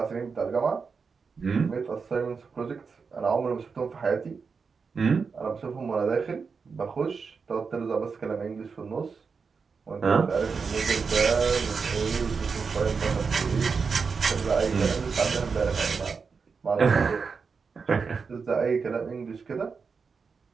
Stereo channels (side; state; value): left; quieter; 5.3 dB